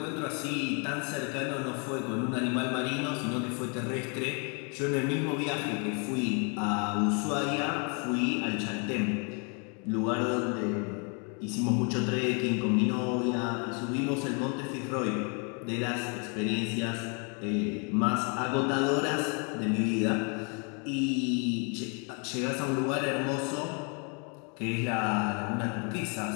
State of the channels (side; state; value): right; quieter; 36.3 dB